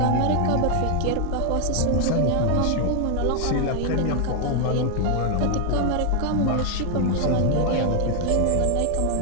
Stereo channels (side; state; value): both; different; correlation 0.00